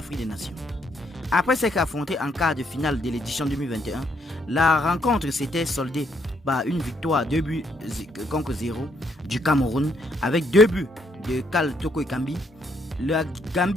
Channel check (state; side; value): normal; both; correlation 0.72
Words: des Nations. Après s'être affronté en quart de finale de l'édition 2021, la rencontre s'était soldée par une victoire 2 buts contre 0 du Cameroun avec 2 buts de Kal Toko Ekambi. La